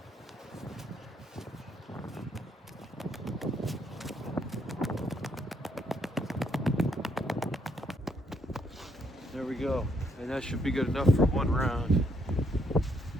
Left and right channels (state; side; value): normal; both; correlation 0.72